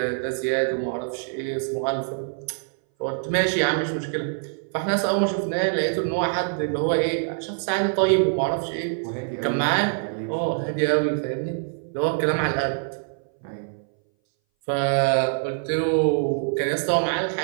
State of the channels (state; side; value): silent; left; 60 dB below the other